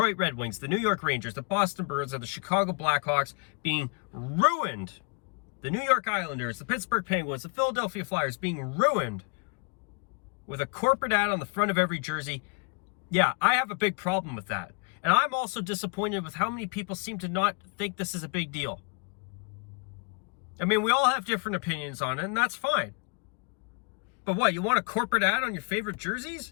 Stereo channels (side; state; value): right; quieter; 35.1 dB